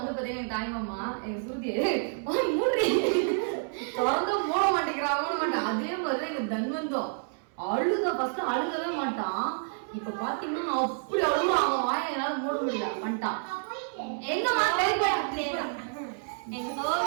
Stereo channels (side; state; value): left; silent; 59 dB below the other